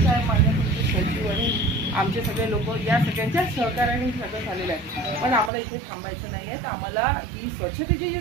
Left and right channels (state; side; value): drops out; left; at 5.5 s